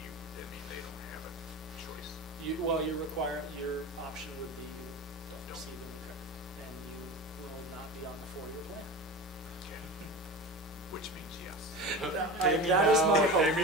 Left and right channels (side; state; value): both; normal; correlation 0.29